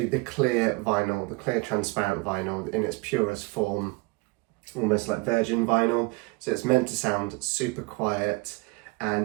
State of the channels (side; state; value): left; quieter; 25.9 dB